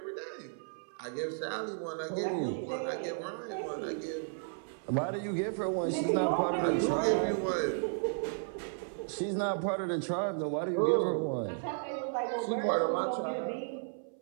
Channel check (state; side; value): silent; left; 55 dB below the other